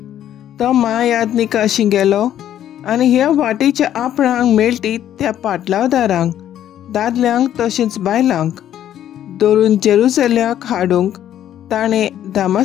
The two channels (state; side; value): quieter; right; 11.1 dB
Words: तो महायाज्ञिका गेलो आनी ह्या वाटेच्या आपणांक मेळटी त्या पाटलावदारांक, दादल्यांक तशेंच बायलांक धरून जेरुसल्याक हाडूंक ताणें